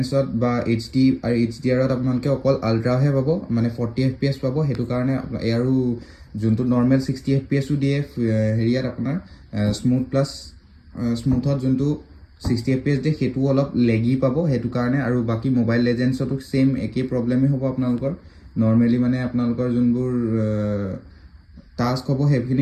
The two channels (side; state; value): both; identical; correlation 1.00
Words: বা HD আৰু HDRত আপোনালোকে অকল আল্ট্ৰাহে পাব মানে 40 FPS পাব সেইটো কাৰণে আৰু যোনটো নৰ্মেল 60 FPSও দিয়ে হেৰিয়াত আপোনাৰ স্মুথত যোনটো 60 FPS দিয়ে সেইটো অলপ লেগি পাব সেইটো কাৰণে আৰু বাকী মোবাইল লেজেণ্ডছতো সেম একেই প্ৰব্লেমেই হ'ব আপোনালোকৰ নৰ্মেলি মানে আপোনালোকৰ যোনবোৰ টাস্ক হ'ব